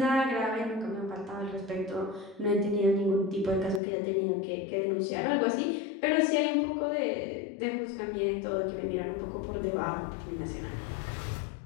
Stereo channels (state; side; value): drops out; right; at 3.8 s